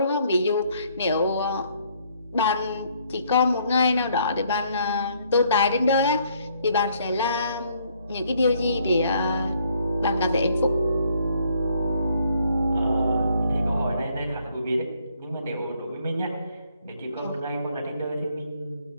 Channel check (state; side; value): inverted; both; correlation -0.67